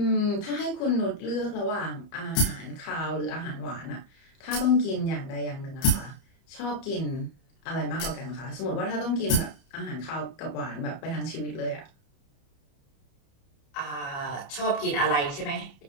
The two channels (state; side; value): late; right; 30 ms